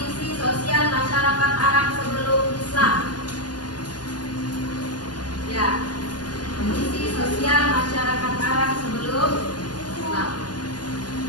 Sosial Masyarakat Arab Sebelum Islam. Ya, kondisi sosial masyarakat Arab sebelum Islam.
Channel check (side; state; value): right; late; 0.70 ms